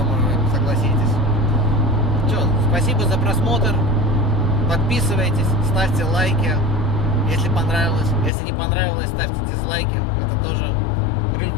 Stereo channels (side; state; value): right; drops out; at 8.3 s